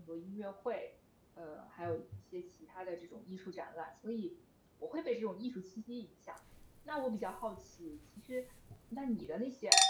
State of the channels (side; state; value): both; identical; correlation 1.00